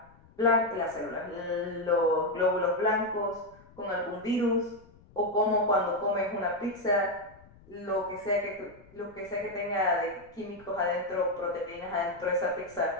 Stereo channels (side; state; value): left; noise; rumble, 25 dB below the sound